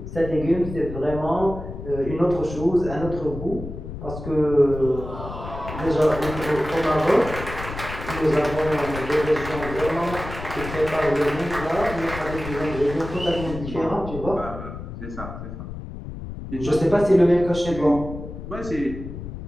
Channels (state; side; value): noise; left; rumble, 9 dB below the sound